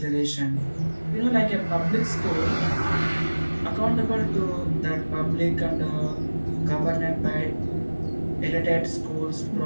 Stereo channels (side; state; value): both; inverted; correlation -1.00